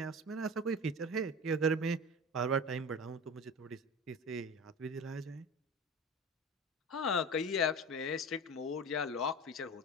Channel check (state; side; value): normal; both; correlation 0.31